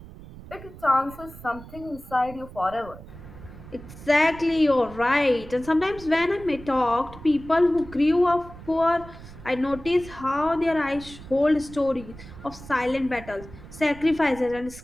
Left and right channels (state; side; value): noise; right; rumble, 16 dB below the sound